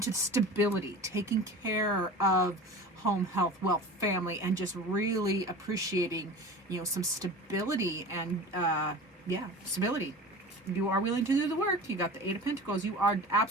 stability, taking care of home, health, wealth, family, and just really appreciating, some stability and, stability. You are willing to do the work. You got the Eight of Pentacles. You are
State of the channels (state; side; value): normal; both; correlation 0.36